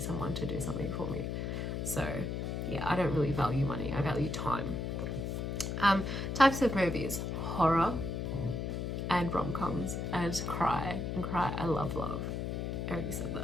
to do something for me. So yeah, I don't really value money. I value time. Types of movies: horror and rom-coms and cry. I love love. I already said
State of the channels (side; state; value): left; noise; hum, 2 dB below the sound